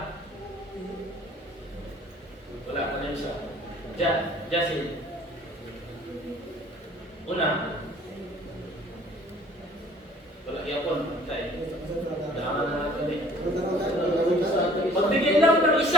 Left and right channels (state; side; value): normal; both; correlation 0.53